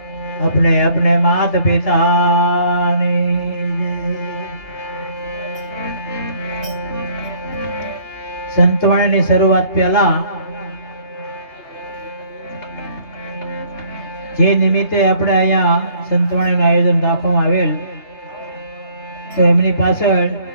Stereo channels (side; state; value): right; late; 3.3 ms